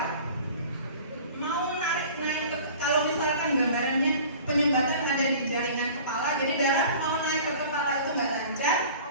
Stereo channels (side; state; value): both; inverted; correlation -0.44